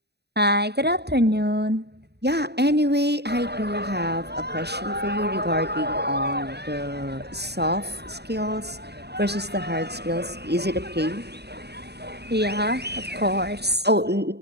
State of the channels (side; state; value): left; late; 0.48 ms